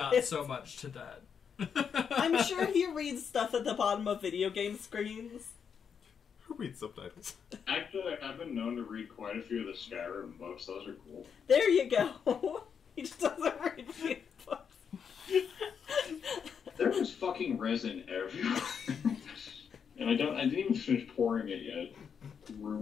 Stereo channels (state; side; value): quieter; right; 7.0 dB